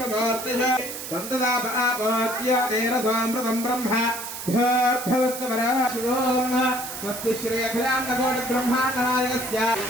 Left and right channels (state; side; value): noise; right; hiss, 8 dB below the sound